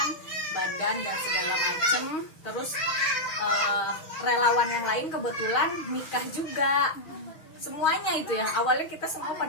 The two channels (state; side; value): late; right; 6.4 ms